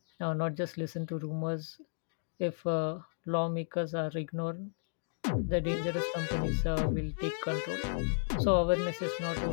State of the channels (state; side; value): silent; right; digital silence